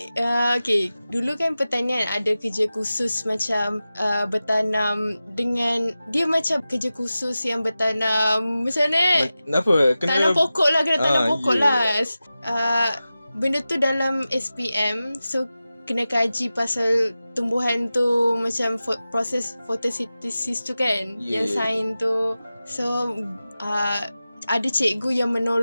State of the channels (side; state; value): both; inverted; correlation -0.95